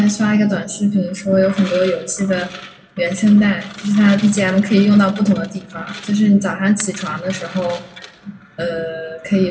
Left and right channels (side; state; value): both; identical; correlation 1.00